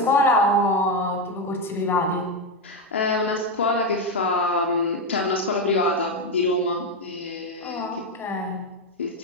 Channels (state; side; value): normal; both; correlation 0.08